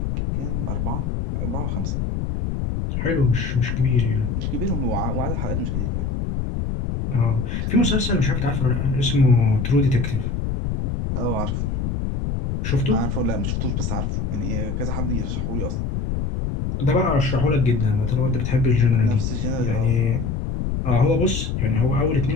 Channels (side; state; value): left; noise; rumble, 2 dB below the sound